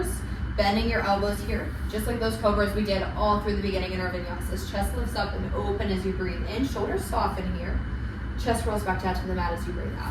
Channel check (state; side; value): identical; both; correlation 1.00